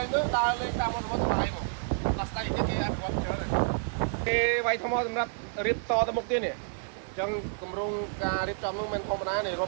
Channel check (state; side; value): silent; left; 58 dB below the other